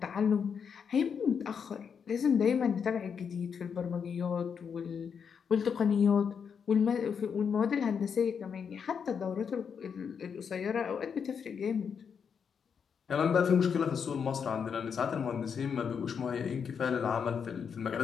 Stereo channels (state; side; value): quieter; right; 6.8 dB